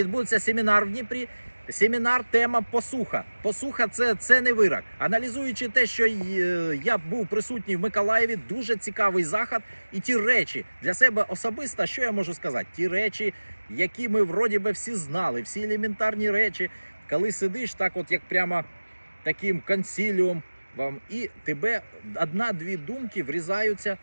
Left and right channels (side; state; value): both; inverted; correlation -1.00